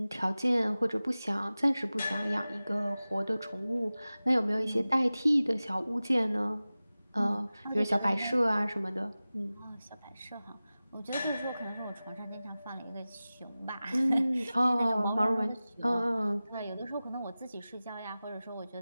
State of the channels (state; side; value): inverted; both; correlation -0.97